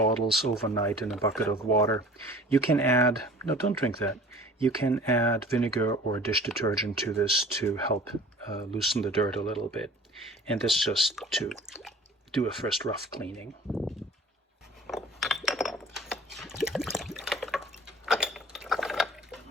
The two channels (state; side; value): normal; both; correlation 0.46